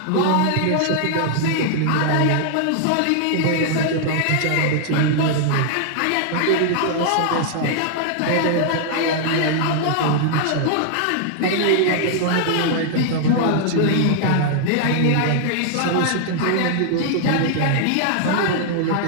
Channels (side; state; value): both; different; correlation 0.00